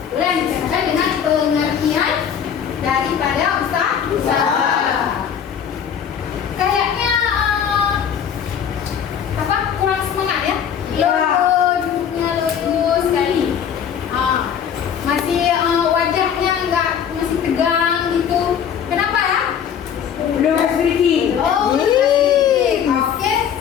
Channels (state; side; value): quieter; right; 8.3 dB